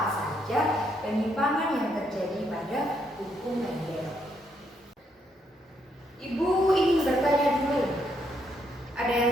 saja penyimpangan yang terjadi pada hukum Mendel. Ibu ingin bertanya dulu, ada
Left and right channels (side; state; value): both; normal; correlation 0.75